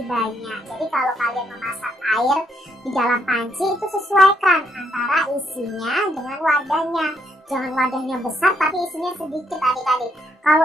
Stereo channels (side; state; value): both; normal; correlation 0.74